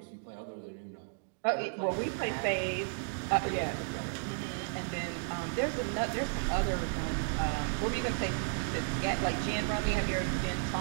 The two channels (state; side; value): silent; left; 55 dB below the other